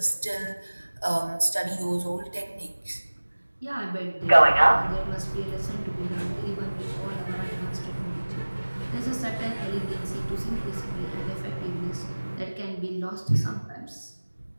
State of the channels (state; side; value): inverted; both; correlation -1.00